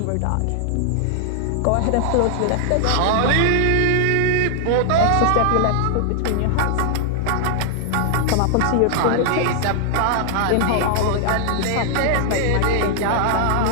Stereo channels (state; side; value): different; both; correlation 0.00